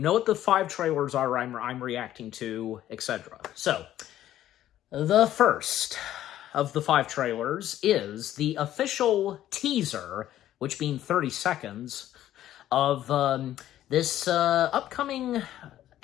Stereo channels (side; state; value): right; quieter; 12.7 dB